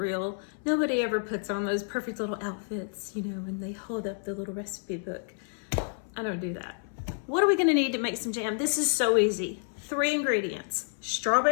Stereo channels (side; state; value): right; silent; 58 dB below the other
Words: Nobody ever puts on those perfect little outfits, you know, when they hold up the little recipe book. I don't do that. What are we gonna need to make some jam? This is so easy. 3 ingredients: